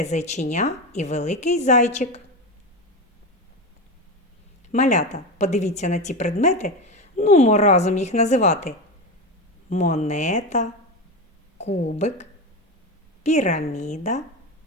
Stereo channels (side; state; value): both; normal; correlation 0.19